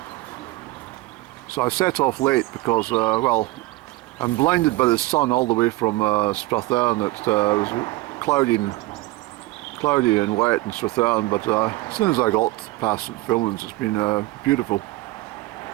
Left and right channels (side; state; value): left; quieter; 19.4 dB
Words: So I set off late because, well, I'm blinded by the sun all the way from Strathern. It was cloudy and wet in Strathern, but as soon as I got past St Filmons, it's been beautiful.